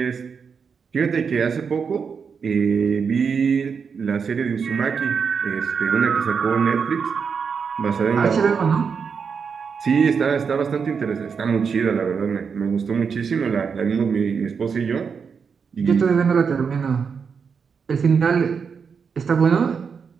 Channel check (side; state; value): left; quieter; 6.0 dB